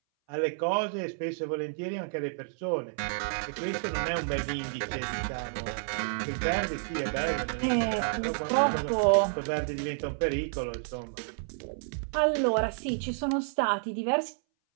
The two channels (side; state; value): left; silent; 58 dB below the other